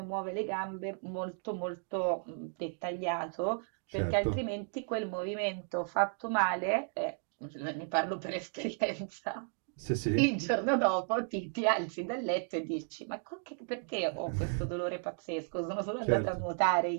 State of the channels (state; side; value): silent; left; 55 dB below the other